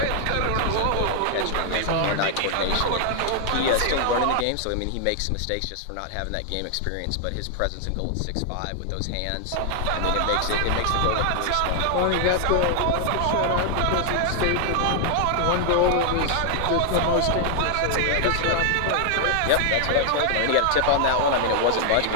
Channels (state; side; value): different; both; correlation 0.00